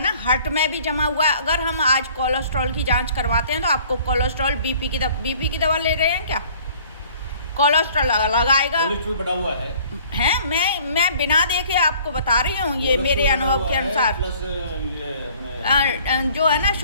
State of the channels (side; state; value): both; inverted; correlation -0.54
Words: ना हार्ट में भी जमा हुआ है। अगर हम आज कोलेस्ट्रॉल की जांच करवाते हैं तो आपको कोलेस्ट्रॉल बीपी की दवा ले रहे हैं क्या? कोलेस्ट्रॉल लगाएगा। कोलेस्ट्रॉल बढ़ा हुआ है मैं बिना देखे आपको बता रही हूँ, ये मेरे अनुभव के अनुसार। जो है ना